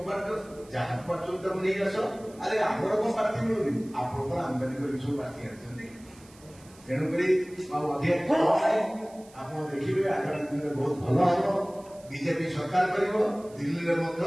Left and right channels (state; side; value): noise; right; hiss, 25 dB below the sound